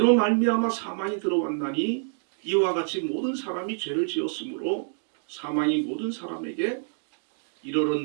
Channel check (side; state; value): left; silent; digital silence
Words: 말미암아 사망이 들어왔나니 이와 같이 모든 사람이 죄를 지었으므로 사망이 모든 사람에게